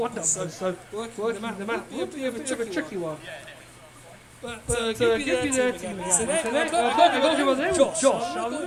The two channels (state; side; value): identical; both; correlation 1.00